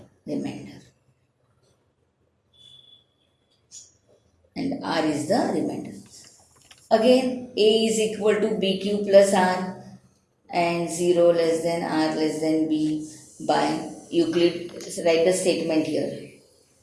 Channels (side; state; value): both; identical; correlation 1.00